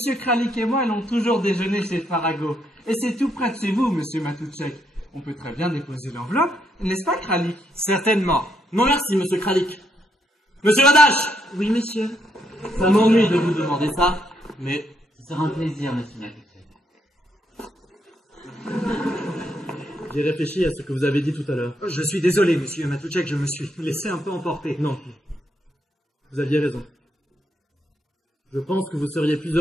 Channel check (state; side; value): normal; both; correlation 0.76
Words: Kralik et moi allons toujours déjeuner chez Farago. Et c'est tout près de chez vous, monsieur Matoutchek. On peut très bien déposer l'enveloppe, n'est-ce pas, Kralik? Certainement. Non merci, monsieur Kralik. Monsieur Radache! Oui, monsieur. Ça m'ennuie de vous demander ça, mais... Ce sera un plaisir, monsieur Matoutchek. J'ai réfléchi à ce que vous avez dit tout à l'heure. Je suis désolé, monsieur Matoutchek, je me suis laissé un peu emporter. Non. Vous aviez raison. Je pense que vous seriez plus